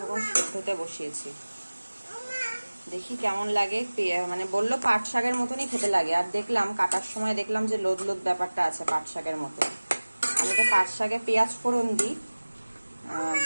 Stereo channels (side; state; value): both; inverted; correlation -1.00